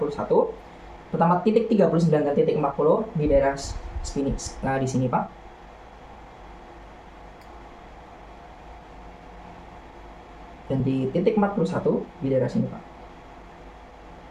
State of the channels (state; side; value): identical; both; correlation 1.00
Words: Pertama titik 39 dan titik 40 di daerah sini, di sini Pak. Dan di titik 41 di daerah sini Pak.